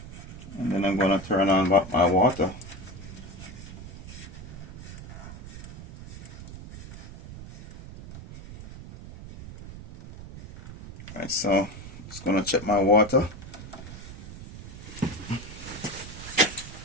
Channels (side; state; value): right; noise; rumble, 13 dB below the sound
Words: And then I'm gonna turn on my water. Alright, so just gonna check my water.